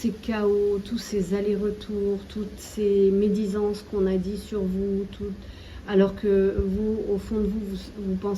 chaos, tous ces allers-retours, toutes ces médisances qu'on a dit sur vous, alors que vous, au fond de vous, vous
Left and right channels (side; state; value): both; identical; correlation 1.00